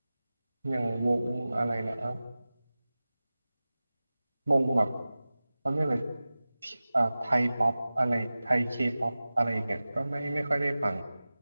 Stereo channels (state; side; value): inverted; both; correlation -0.97